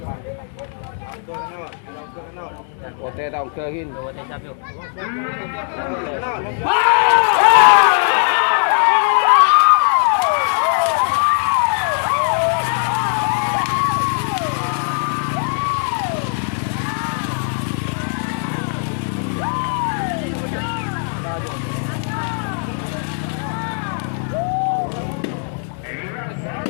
Oke, tahu ke gin. Oke, siap yuk.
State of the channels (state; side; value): silent; right; 56 dB below the other